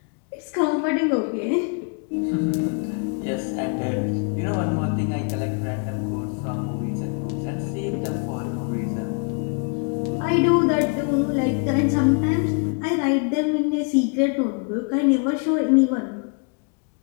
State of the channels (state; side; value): quieter; right; 38.3 dB